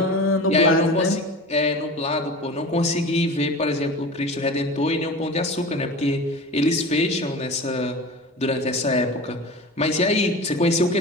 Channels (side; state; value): both; normal; correlation 0.33